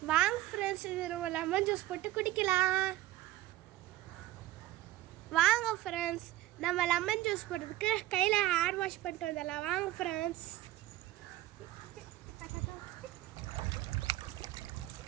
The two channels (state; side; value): quieter; left; 15.4 dB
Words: வாங்க ஃப்ரெண்ட்ஸ், இது நம்ம லெமன் ஜூஸ் போட்டு குடிக்கலாம். வாங்க ஃப்ரெண்ட்ஸ், நம்ம லெமன் ஜூஸ் போடுறதுக்கு கையில் ஹேர் வாஷ் பண்ணிட்டு வந்துடலாம். வாங்க ஃப்ரெண்ட்ஸ்.